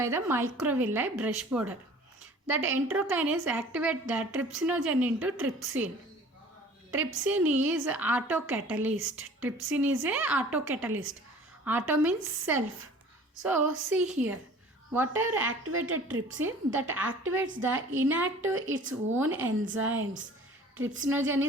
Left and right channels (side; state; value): both; normal; correlation 0.47